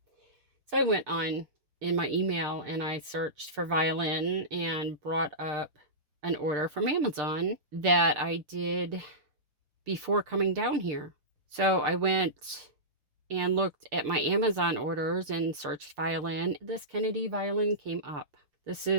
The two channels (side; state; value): left; late; 6.7 ms